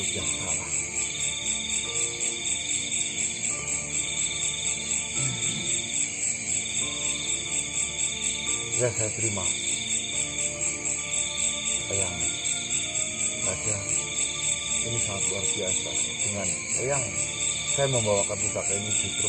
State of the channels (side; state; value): both; identical; correlation 1.00